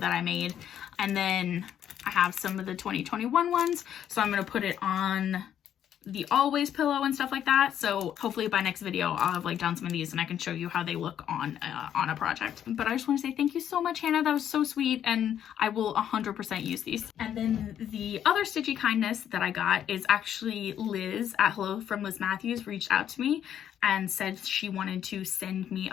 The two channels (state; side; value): quieter; right; 9.9 dB